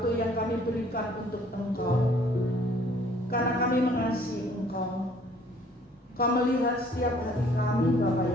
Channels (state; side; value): normal; both; correlation 0.58